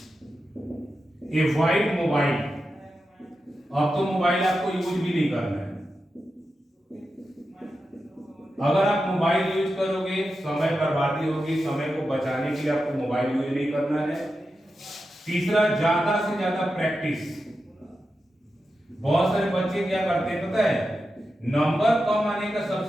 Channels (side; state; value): both; normal; correlation 0.90